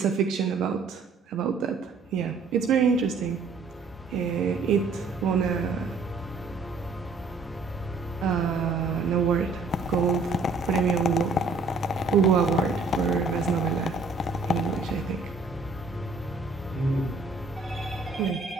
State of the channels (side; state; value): left; quieter; 3.9 dB